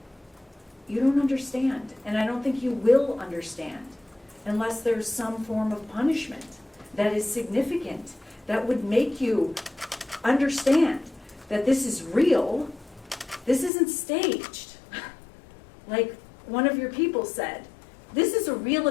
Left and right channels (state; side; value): drops out; right; at 13.7 s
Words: You don't understand. And I don't think you will understand unless there's some form of punishment that is significant, that would make you understand that this is real. This isn't staged. Like one of your people said, this is a real